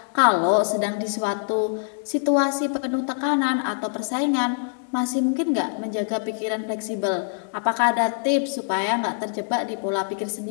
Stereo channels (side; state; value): right; silent; digital silence